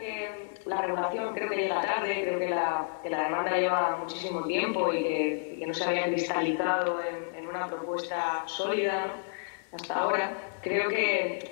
la regulación creo que llega tarde, creo que la demanda lleva muchísimo tiempo y que no se había cristalizado en una propuesta sólida, ¿no? Hasta ahora, creo que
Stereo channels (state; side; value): silent; right; digital silence